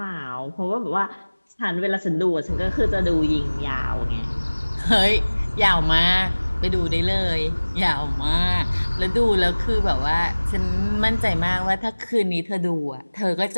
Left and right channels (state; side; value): inverted; both; correlation -1.00